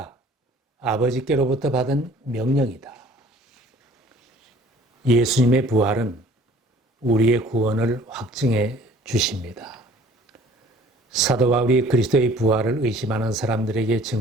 아버지께로부터 받은 명령이다. 예수님의 부활은 우리의 구원을 확증해 주십니다. 사도 바울이 그리스도의 부활을 의심하는 사람들에게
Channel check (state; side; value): normal; both; correlation 0.53